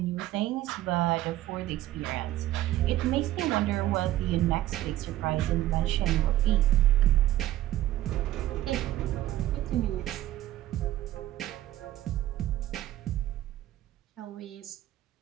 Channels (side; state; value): left; quieter; 14.5 dB